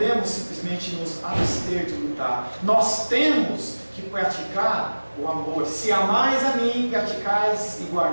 simplesmente nos abster de lutar. Nós temos que praticar o amor. Se amais a mim, praticais e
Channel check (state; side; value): inverted; both; correlation -1.00